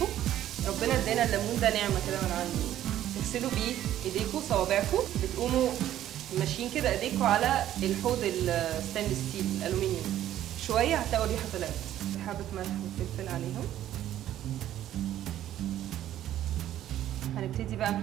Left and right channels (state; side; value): quieter; left; 12.3 dB